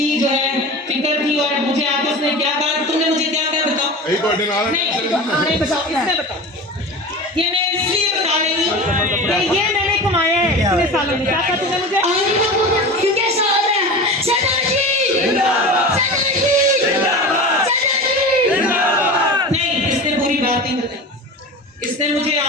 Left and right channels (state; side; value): normal; both; correlation 0.31